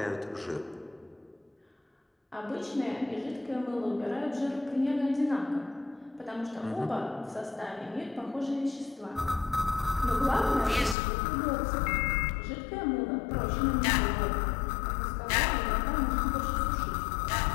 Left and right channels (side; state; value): right; drops out; at 11.0 s